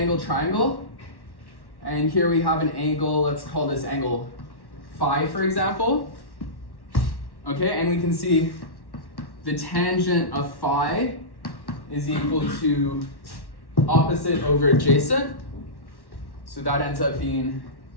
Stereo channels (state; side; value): late; right; 1.1 ms